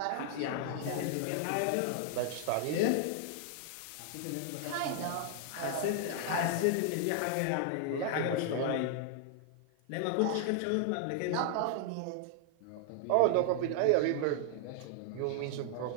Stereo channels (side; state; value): both; different; correlation -0.01